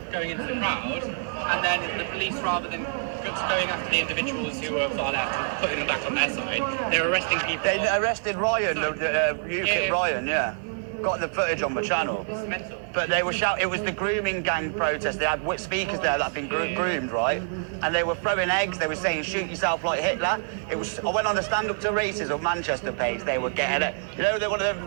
going into the crowd, and then the police, rather than going after the individuals who were far left and putting them back on their side, they were arresting people. They arrested Ryan, UKIP Ryan, yeah. Got the footage on the channel. It's mental. But they were shouting, it was the grooming gang protest. They had speakers there that had been groomed, right? And they were throwing eggs. They were saying, shoot yourself like Hitler. I went on the Stand Up to Racism Manchester page. They were getting it. You know, they wanted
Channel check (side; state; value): left; silent; 61 dB below the other